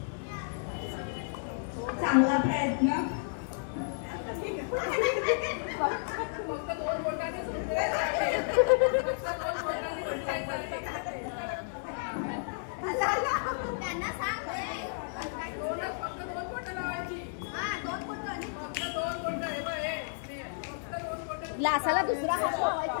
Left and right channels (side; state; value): right; silent; 56 dB below the other